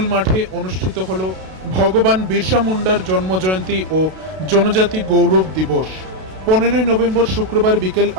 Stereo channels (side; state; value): left; late; 32 ms